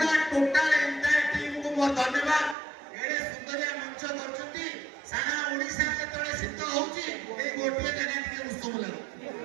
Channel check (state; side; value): drops out; left; at 2.6 s